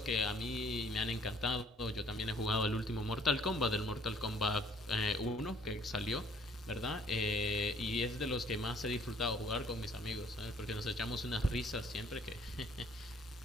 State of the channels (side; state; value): both; normal; correlation 0.59